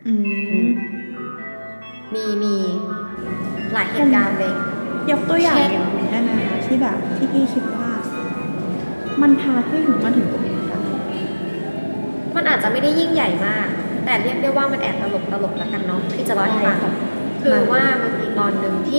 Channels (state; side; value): inverted; both; correlation -1.00